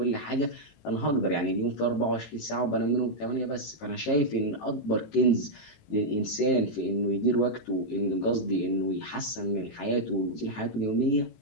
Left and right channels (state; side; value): late; right; 18 ms